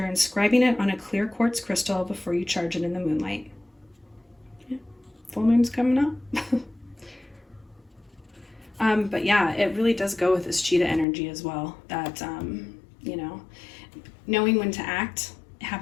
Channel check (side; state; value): right; drops out; at 11.1 s